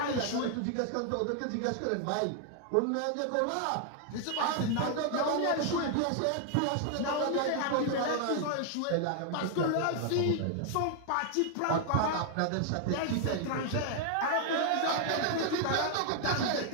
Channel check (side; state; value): both; different; correlation 0.00